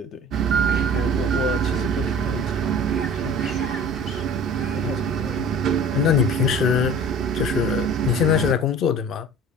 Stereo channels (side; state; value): both; normal; correlation 0.42